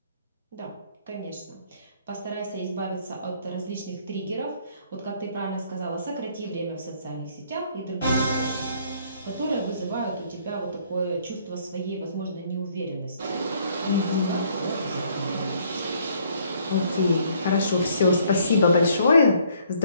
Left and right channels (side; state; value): both; inverted; correlation -0.63